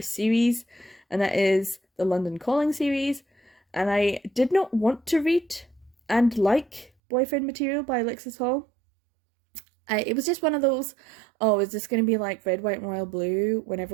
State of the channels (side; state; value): left; drops out; at 6.9 s